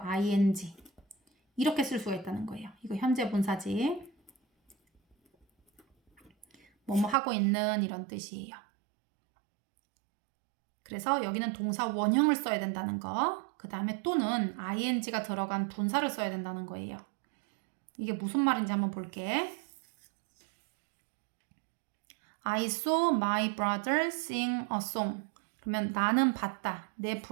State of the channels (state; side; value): drops out; left; at 7.2 s